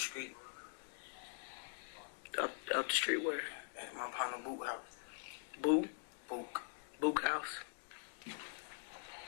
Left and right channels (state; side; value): silent; right; digital silence